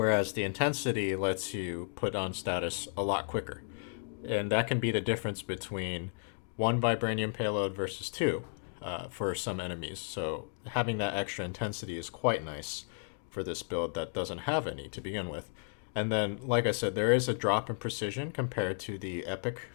the intensity lets you put on status a lot quicker. And that can be the difference between one Vibranium Payload versus two for some enemies. So having that extra intensity is quite nice for this build that doesn't have any to begin with. And then, like I said, there is a drop in precision compared to the Epic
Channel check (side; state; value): right; silent; digital silence